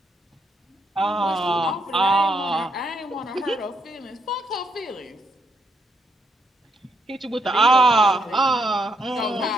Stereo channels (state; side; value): normal; both; correlation 0.76